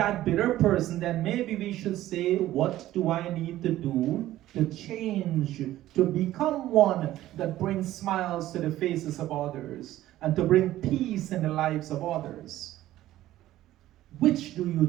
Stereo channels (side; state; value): left; quieter; 14.5 dB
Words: bitter person, then maybe we should say, what do I need to do to change, to become one that brings smiles to the faces of others and to bring peace in the lives of others? Which do you